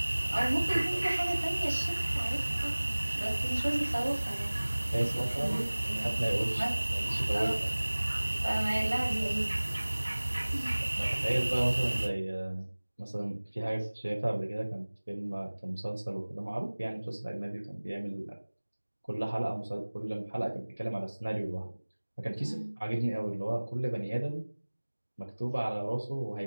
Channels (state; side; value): inverted; both; correlation -1.00